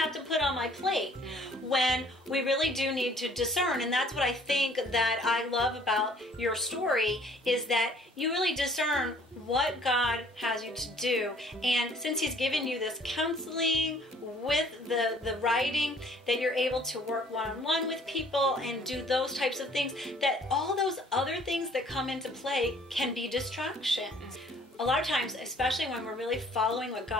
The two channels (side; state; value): both; normal; correlation 0.57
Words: to put on my plate, when we really do need to discern. And that's what I think that I love about your story, is that you really discern what God has you to do. And since He's given you this counseling with the writing, that you're able to work one-on-one with people and do those types of things, that all those other things that come into play can be distractions. A lot of times, especially when we're really following what